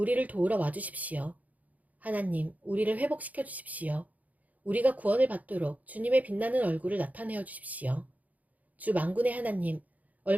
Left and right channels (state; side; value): late; left; 0.076 ms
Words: 도우러 와주십시오. 하나님, 우리를 회복시켜 주십시오. 우리가 구원을 받도록 주님의 빛나는 얼굴을 나타내어 주십시오. 주 만군의 하나님,